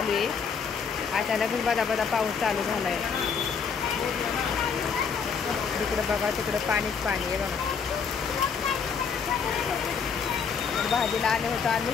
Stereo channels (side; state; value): right; quieter; 6.2 dB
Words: आहे. अचानकच बदा बदा पाऊस चालू झाला आहे. तिकडं बघा, तिकडं पाणीच पाणी आहे बघा. भाजीला आले होतो आम्ही,